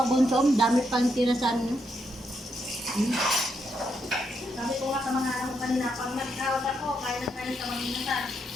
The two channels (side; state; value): both; normal; correlation 0.79